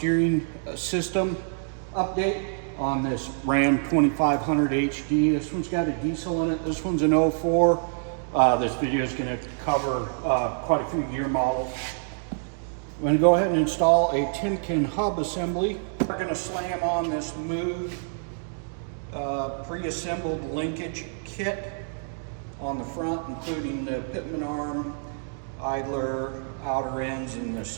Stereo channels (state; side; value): silent; left; digital silence